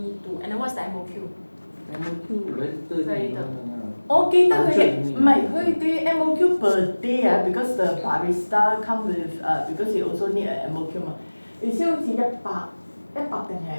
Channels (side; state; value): both; inverted; correlation -1.00